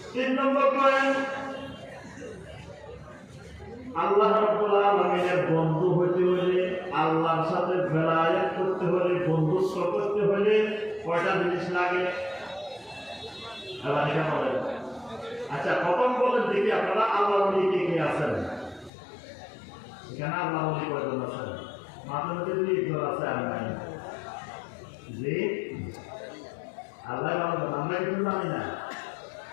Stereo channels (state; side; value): drops out; right; at 18.9 s